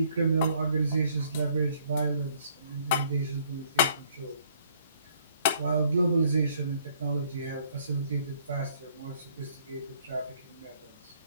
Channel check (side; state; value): both; inverted; correlation -0.63